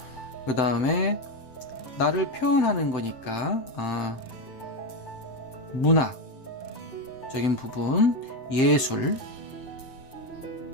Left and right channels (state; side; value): late; right; 7.8 ms